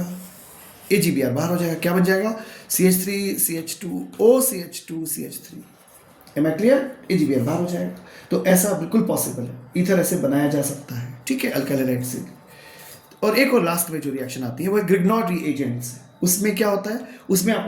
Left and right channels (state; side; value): identical; both; correlation 1.00